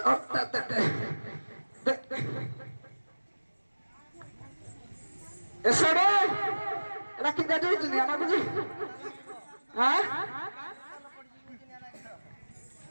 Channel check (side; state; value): both; inverted; correlation -1.00